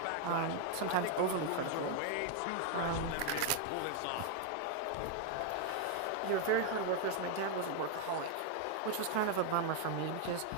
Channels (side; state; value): both; different; correlation 0.00